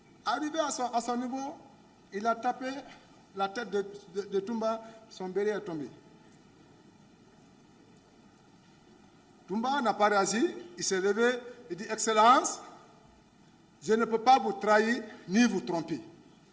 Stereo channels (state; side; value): identical; both; correlation 1.00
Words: Arrivé à son niveau, il a tapé la tête de Toumba, son béret est tombé. Toumba n'a pas réagi, il s'est levé, il dit, Excellence, je ne peux pas vous trahir ni vous tromper.